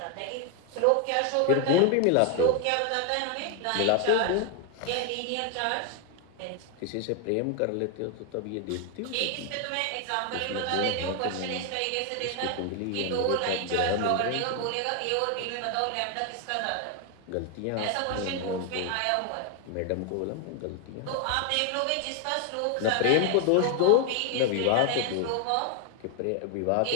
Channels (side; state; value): both; different; correlation 0.00